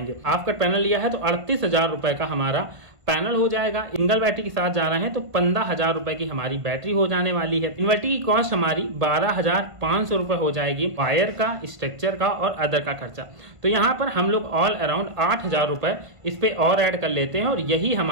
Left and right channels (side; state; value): left; late; 1.5 ms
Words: आपका पैनल लिया है तो 38,000 रुपए का हमारा पैनल हो जाएगा। सिंगल बैटरी के साथ जा रहे हैं तो 15,000 रुपए की हमारी बैटरी हो जाने वाली है। इन्वर्टर की कॉस्ट हमारी 12,500 रुपए हो जाएगी, वायर का, स्ट्रक्चर का और अदर का खर्चा। तो यहाँ पर हम लोग ऑल अराउंड 8,000 रुपए इस पे और ऐड कर लेते हैं, और यही